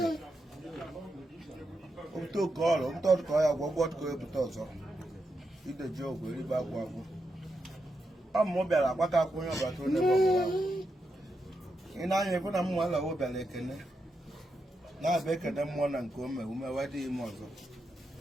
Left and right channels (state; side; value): normal; both; correlation 0.85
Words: to ko ya gwogwo ko ebuta ozo. Ide je ogwe ri ba gwa gwo. Ammo biara gbaka akwunyo ba to ne bo. Ina anye fu na mu ala wo biara ekene. Na be ekene mo na nke o me ume wadi ime ozo.